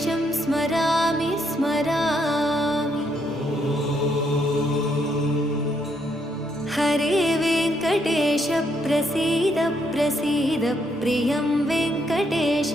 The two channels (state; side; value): normal; both; correlation 0.74